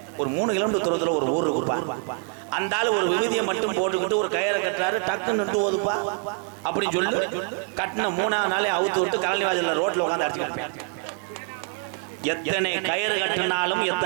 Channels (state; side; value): quieter; left; 39.9 dB